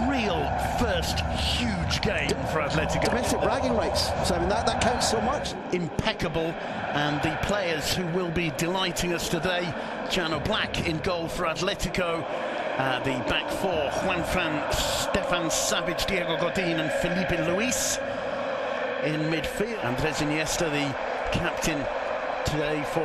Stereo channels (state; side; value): identical; both; correlation 1.00